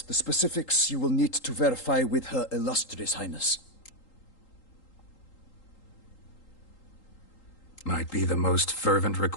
the specifics you will need to verify with Her Illustrious Highness. Might be the most fervent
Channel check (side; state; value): right; late; 3.8 ms